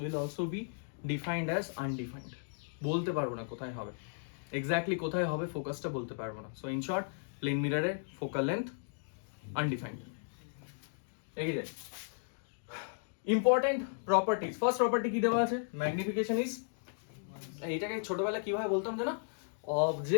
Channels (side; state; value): right; silent; digital silence